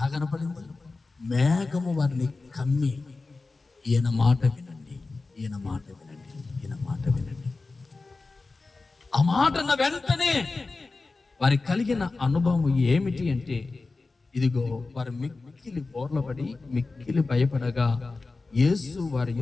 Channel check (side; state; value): right; quieter; 3.7 dB